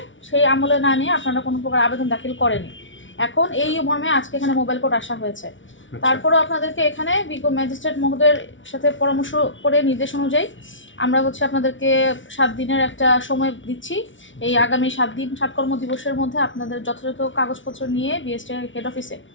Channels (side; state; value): right; late; 0.56 ms